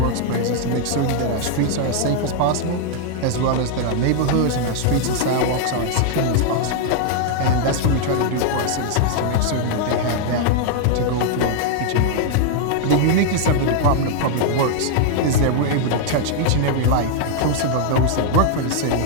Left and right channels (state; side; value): different; both; correlation 0.00